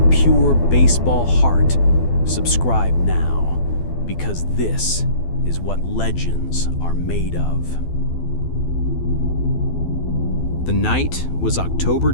pure baseball heart, subscribe now, because this is what legends are made of. The night was October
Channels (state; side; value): late; right; 12 ms